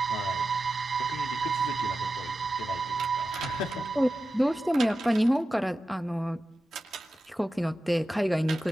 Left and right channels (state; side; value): normal; both; correlation 0.93